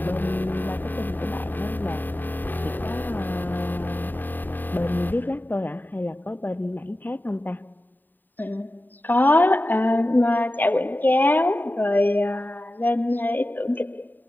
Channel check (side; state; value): right; late; 0.090 ms